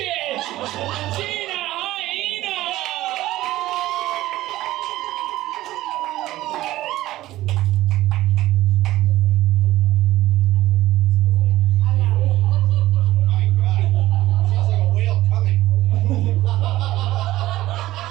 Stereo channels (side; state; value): left; quieter; 16.0 dB